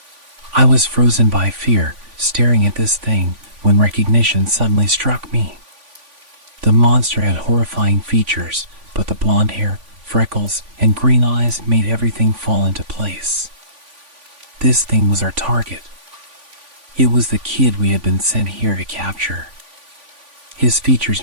I was frozen by fear, staring at this thing, when recognition suddenly struck me. The monster had horrifying features, but the blonde hair, freckles, and green eyes made everything fall into place. This thing was our target. It was the kid we had been sent here to capture. His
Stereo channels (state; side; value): late; left; 3.5 ms